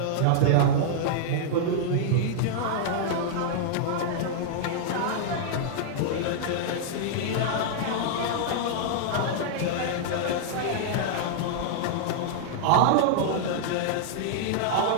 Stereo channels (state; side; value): different; both; correlation -0.01